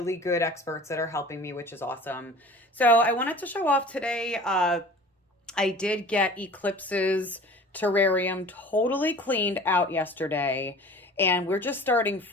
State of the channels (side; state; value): both; normal; correlation 0.43